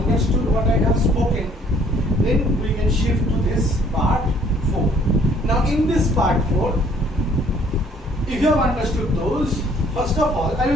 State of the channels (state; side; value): normal; both; correlation 0.60